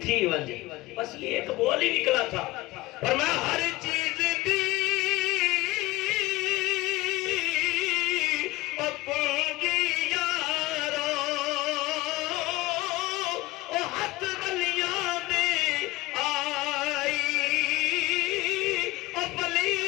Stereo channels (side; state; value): right; quieter; 19.9 dB